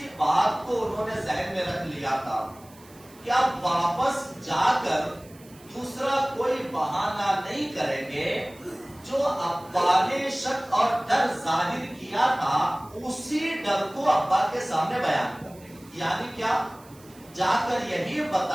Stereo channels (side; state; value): right; noise; hiss, 25 dB below the sound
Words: بات کو انہوں نے ذہن میں رکھ لیا تھا کہ اب واپس جا کر دوسرا کوئی بہانہ نہیں کریں گے، جو ابا نے شک اور ڈر ظاہر کیا تھا اسی ڈر کو ابا کے سامنے بیان کریں گے. یعنی کیا؟ جا کر یہی